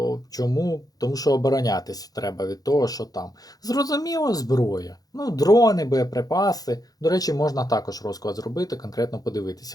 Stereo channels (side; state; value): right; late; 0.18 ms